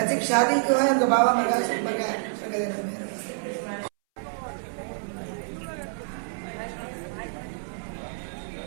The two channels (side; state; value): left; silent; 60 dB below the other